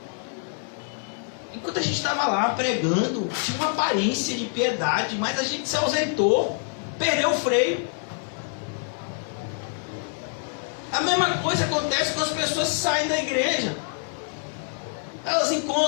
Enquanto a gente estava lá pregando, tinha uma aparência de piedade, mas a gente se ausentou, perdeu o freio. A mesma coisa acontece quando as pessoas saem da igreja.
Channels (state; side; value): silent; right; 61 dB below the other